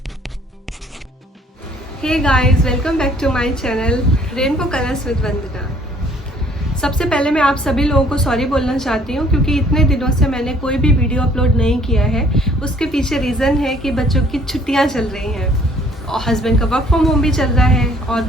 Hey guys, welcome back to my channel Rainbow Colors with Vandana। सबसे पहले मैं आप सभी लोगों को sorry बोलना चाहती हूँ क्योंकि इतने दिनों से मैंने कोई भी वीडियो अपलोड नहीं किया है। उसके पीछे रीज़न है कि बच्चों की छुट्टियाँ चल रही हैं और हस्बैंड का वर्क फ्रॉम होम भी चल रहा है और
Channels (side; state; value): both; normal; correlation 0.59